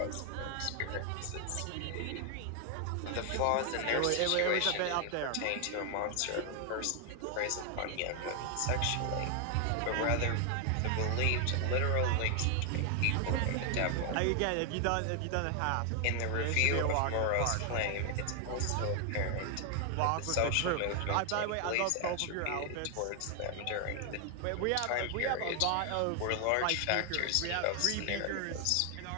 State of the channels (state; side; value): different; both; correlation 0.00